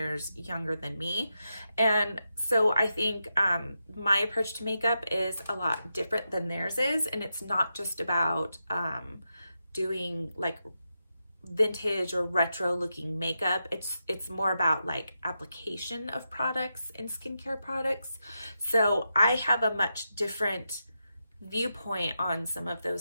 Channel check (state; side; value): inverted; both; correlation -0.87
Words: younger than me. And so I think my approach to makeup is a lot different than theirs is, and it's not just about doing like vintage or retro looking makeup. It's more about like application of products and skincare products. So I have a much different viewpoint on some of